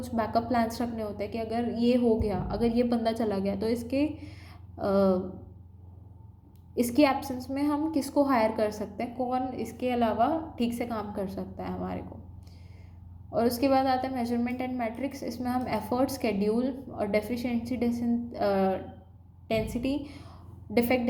बैकअप प्लान्स रखने होते हैं कि अगर ये हो गया, अगर ये बंदा चला गया तो इसकी एब्सेंस में हम किसको हायर कर सकते हैं, कौन इसके अलावा ठीक से काम कर सकता है हमारे को। और उसके बाद आता है मेजरमेंट एंड मैट्रिक्स। इसमें हम एफर्ट, स्केड्यूल और deficiency density defect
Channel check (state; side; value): identical; both; correlation 1.00